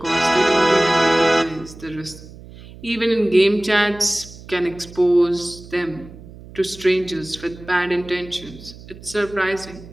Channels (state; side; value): noise; right; hum, 18 dB below the sound